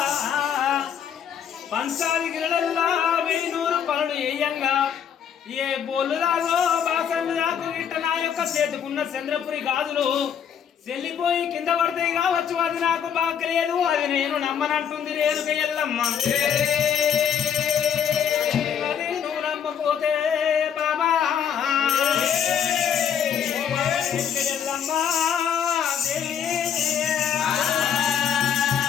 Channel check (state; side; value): quieter; right; 8.4 dB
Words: పంచాది గిరడల్లా 1000 పనులు వేయంగా ఏ బోలు రాగో బాసన్లు రాకు గిట్ట నా యొక్క చేతుకున్న చంద్రపురి గాజులు చెల్లిపోయి కింద పడతాయి కావచ్చు అది నాకు బాగలేదు అది నేను నమ్మనంటుంది రేణుక ఎల్లమ్మ అది నువ్వు నమ్మపోతే బాబా ఎల్లమ్మ